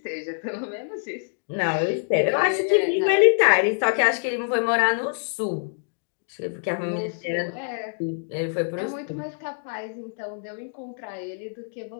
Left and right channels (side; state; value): right; silent; digital silence